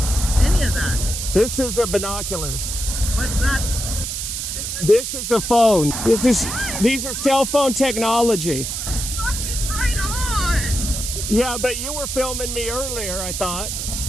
Any of that? This is a binoculars. What's that? This is a phone. These are cell phone technology. Fucking right on. Yeah, but you were filming me earlier, I thought.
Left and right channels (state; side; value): noise; right; hiss, 4 dB below the sound